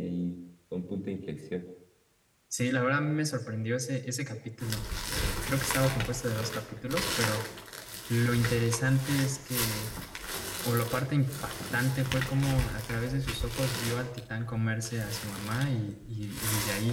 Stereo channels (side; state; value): both; identical; correlation 1.00